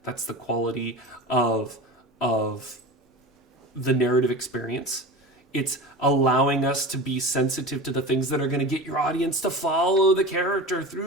That's the quality of the narrative experience. It's allowing us to be sensitive to the things that are going to get your audience to follow the character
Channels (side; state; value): both; normal; correlation 0.31